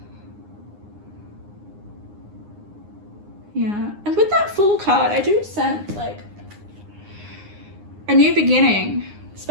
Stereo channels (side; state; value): left; late; 9.7 ms